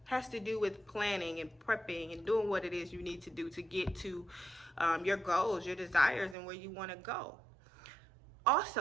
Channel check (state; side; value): drops out; left; at 6.4 s